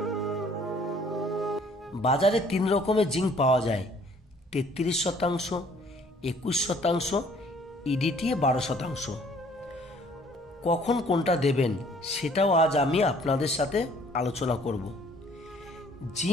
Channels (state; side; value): normal; both; correlation 0.58